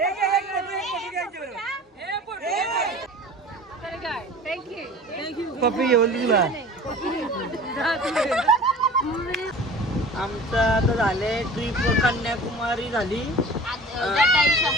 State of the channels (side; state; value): both; normal; correlation 0.41